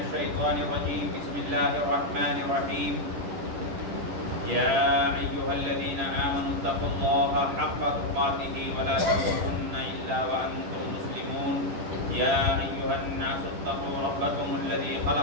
الشيطان الرجيم. بسم الله الرحمن الرحيم. يا أيها الذين آمنوا اتقوا الله حق تقاته ولا تموتن إلا وأنتم مسلمون. يا أيها الناس اتقوا ربكم الذي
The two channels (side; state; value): left; late; 10 ms